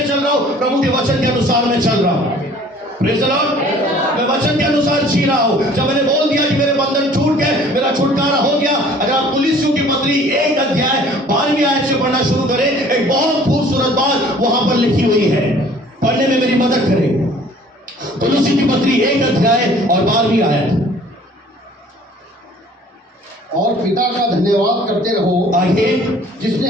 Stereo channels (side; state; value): both; normal; correlation 0.52